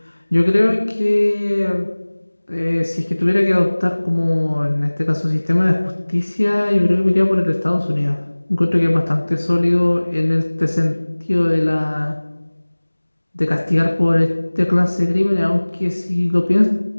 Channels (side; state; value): both; inverted; correlation -1.00